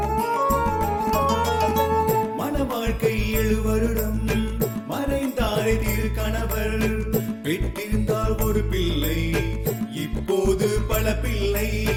வாழ்க்கை 7 வருடம் மறைந்தாரே திருக்கணவர் பெற்றிருந்தால் ஒரு பிள்ளை இப்போது பல பிள்ளை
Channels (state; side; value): identical; both; correlation 1.00